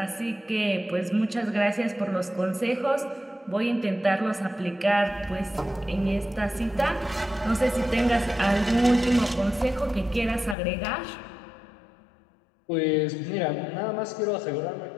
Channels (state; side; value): drops out; right; at 10.6 s